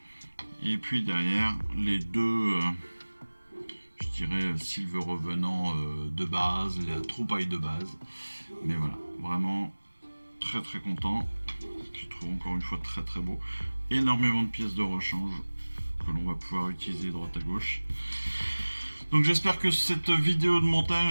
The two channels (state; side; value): inverted; both; correlation -1.00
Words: Et puis derrière, les deux, je dirais, Silver Revenant de base, la troupaille de base. Mais voilà, vraiment très content. Je trouve encore une fois très beau. Énormément de pièces de rechange. que l'on va pouvoir utiliser droite à gauche. Donc j'espère que cette vidéo de